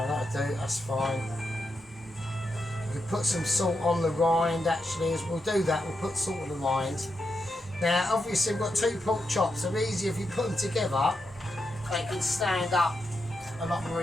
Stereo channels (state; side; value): normal; both; correlation 0.85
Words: that'll do, that's fine. We put some salt on the rind actually, as we'll do that, we'll put salt on the rind. Now obviously we've got 2 pork chops, so easy if you put them together, they can stand up a lot more